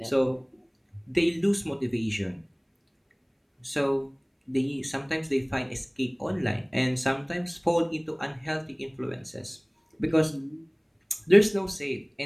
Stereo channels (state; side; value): identical; both; correlation 1.00